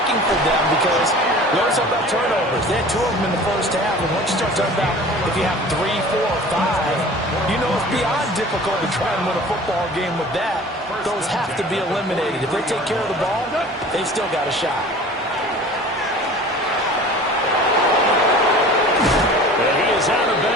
for them because we always talk about turnovers. They had 2 of them in the first half, and once you start talking about if you have 3, 4, 5, you know it's beyond difficult to try and win a football game with that. Those have to be eliminated. If they take care of the ball, they've still got a shot. And he is out of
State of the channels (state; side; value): normal; both; correlation 0.43